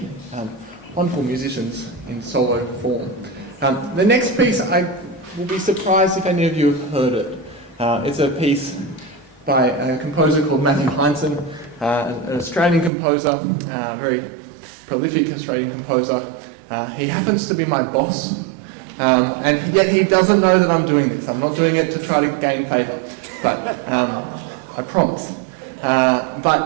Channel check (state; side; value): drops out; left; at 12.9 s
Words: wonderful musicians in solo form. The next piece, I will be surprised if any of you have heard it. It's a piece by a composer called Matthew Hindson, an Australian composer, very prolific Australian composer. He happens to be my boss, and yet he doesn't know that I'm doing this. I'm not doing it to try to gain favour, but I promise.